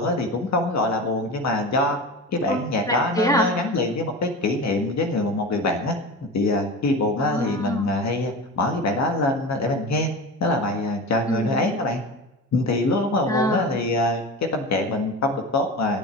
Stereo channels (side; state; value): both; normal; correlation 0.29